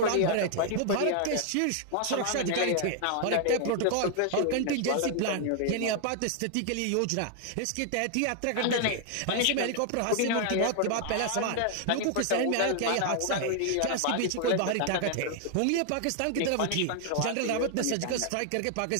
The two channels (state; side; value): different; both; correlation 0.00